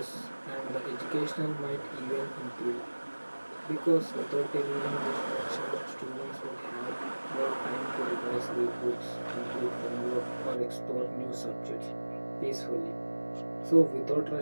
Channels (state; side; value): inverted; both; correlation -1.00